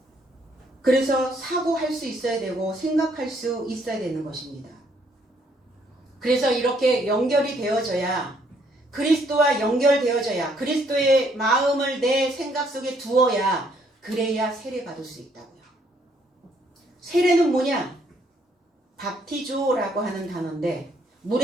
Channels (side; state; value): both; normal; correlation 0.68